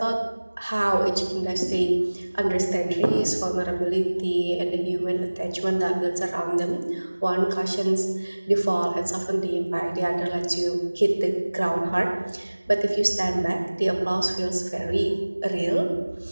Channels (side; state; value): both; inverted; correlation -1.00